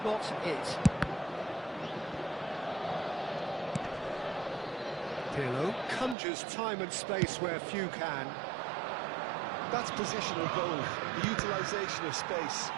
not it. Pirlo conjures time and space where few can. That's positional goal, the utilisation of space.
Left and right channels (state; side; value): drops out; left; at 6.2 s